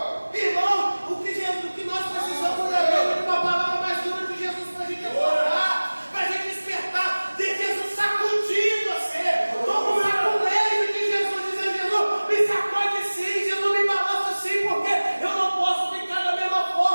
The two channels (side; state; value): both; inverted; correlation -1.00